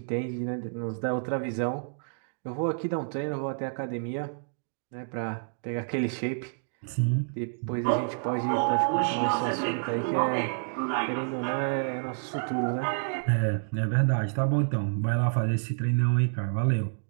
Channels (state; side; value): silent; left; digital silence